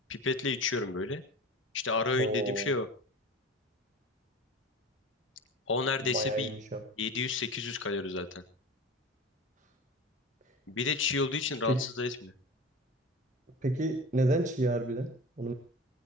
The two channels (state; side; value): normal; both; correlation 0.33